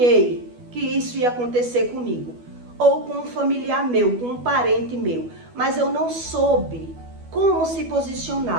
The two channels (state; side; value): late; left; 12 ms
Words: que isso ia acontecer comigo, ou com um familiar meu, com um parente meu, mas eu não soube como se